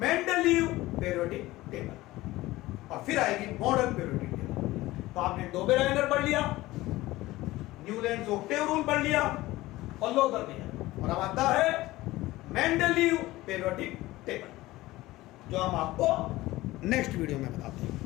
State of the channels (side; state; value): right; quieter; 18.0 dB